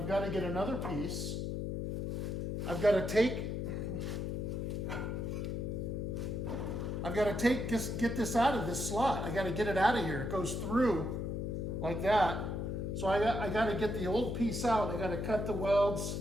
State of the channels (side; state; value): left; noise; hum, 2 dB below the sound